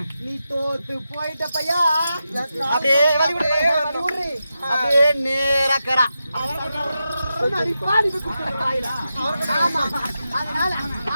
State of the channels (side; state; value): both; inverted; correlation -0.89